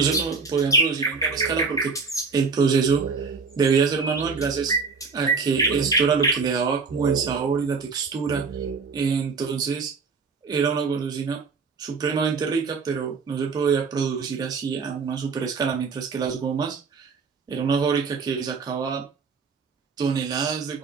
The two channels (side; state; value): left; quieter; 4.9 dB